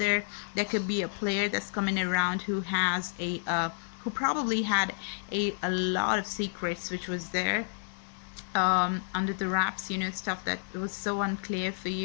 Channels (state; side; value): silent; right; 57 dB below the other